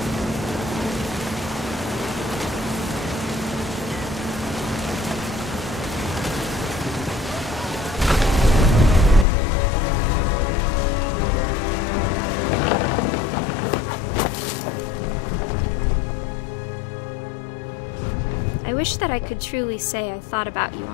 I wish that I could truly say I thought about you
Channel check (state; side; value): drops out; right; at 9.2 s